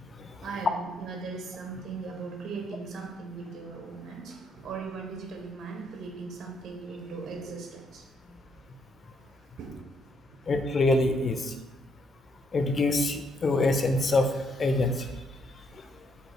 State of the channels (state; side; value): normal; both; correlation 0.72